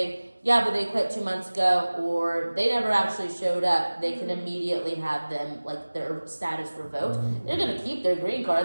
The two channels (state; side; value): inverted; both; correlation -1.00